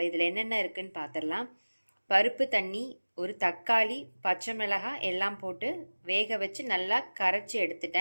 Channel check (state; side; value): inverted; both; correlation -1.00